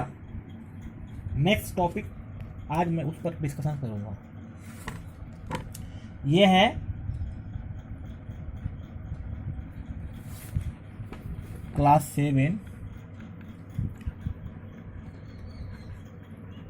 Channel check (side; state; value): both; identical; correlation 1.00